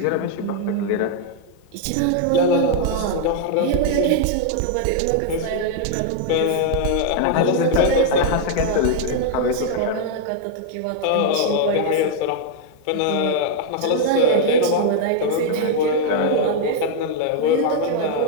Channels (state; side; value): different; both; correlation 0.00